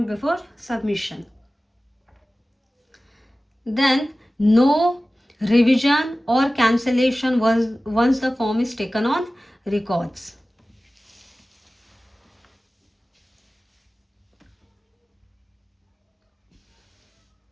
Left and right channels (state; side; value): normal; both; correlation 0.97